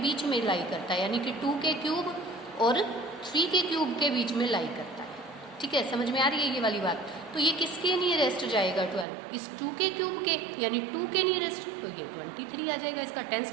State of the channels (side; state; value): left; drops out; at 9.1 s